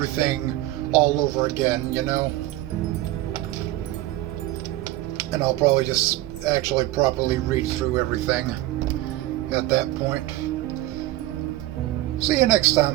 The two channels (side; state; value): left; quieter; 16.2 dB